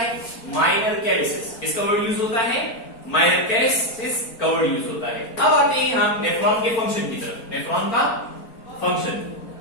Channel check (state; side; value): late; right; 4.4 ms